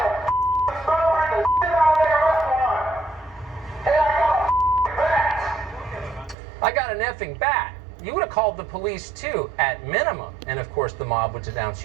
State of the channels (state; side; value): drops out; left; at 6.4 s